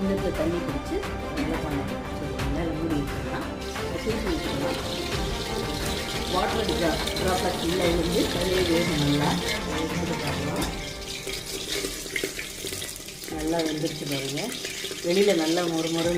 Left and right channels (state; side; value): identical; both; correlation 1.00